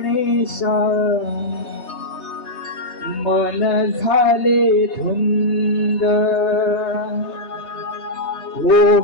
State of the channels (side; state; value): right; late; 3.3 ms